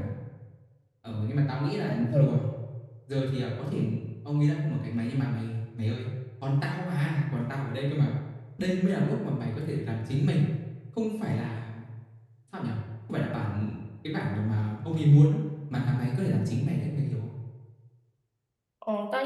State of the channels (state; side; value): identical; both; correlation 1.00